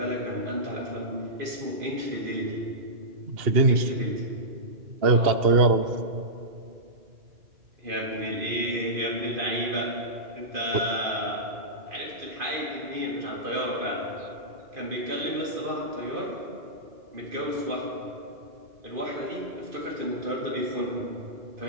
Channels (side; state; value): left; late; 2.8 ms